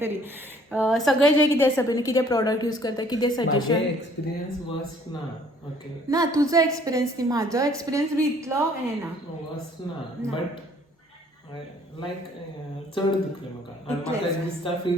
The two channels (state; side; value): normal; both; correlation 0.59